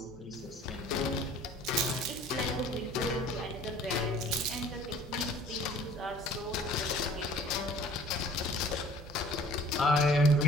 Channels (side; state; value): both; normal; correlation 0.51